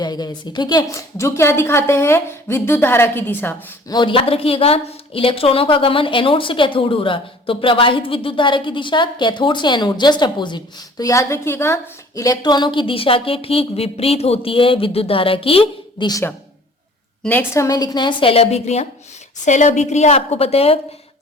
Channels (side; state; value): both; normal; correlation 0.51